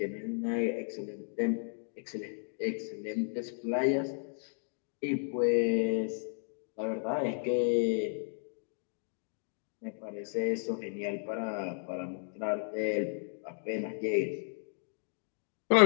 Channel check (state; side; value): silent; right; digital silence